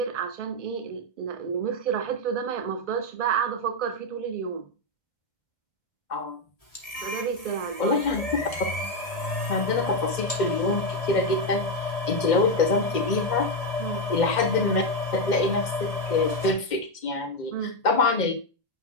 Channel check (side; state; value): right; late; 1.8 ms